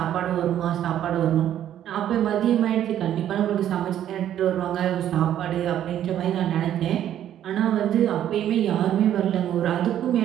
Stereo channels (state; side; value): quieter; left; 11.0 dB